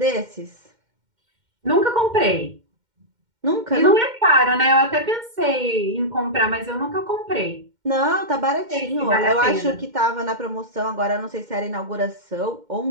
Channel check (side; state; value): left; late; 2.1 ms